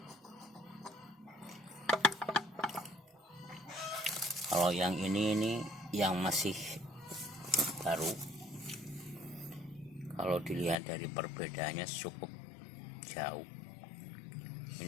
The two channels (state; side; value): drops out; right; at 10.8 s